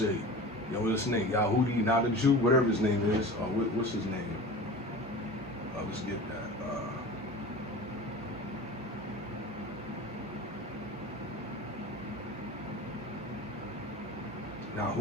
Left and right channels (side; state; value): both; normal; correlation 0.35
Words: name, Yahudi, not a Jew, whatever his name is. What's his name? Let's get that.